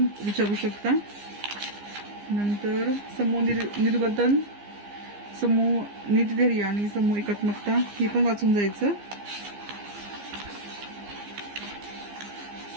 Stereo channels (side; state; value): left; late; 15 ms